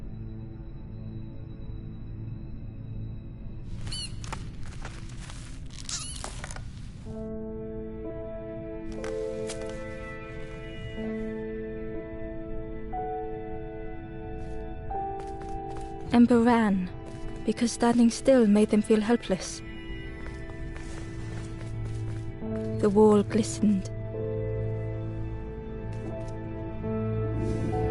Ember ran, because standing still made them feel helpless. The wall glistened.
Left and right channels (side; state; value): both; identical; correlation 1.00